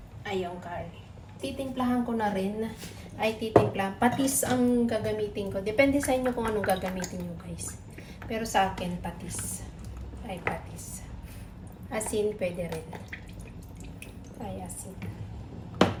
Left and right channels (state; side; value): identical; both; correlation 1.00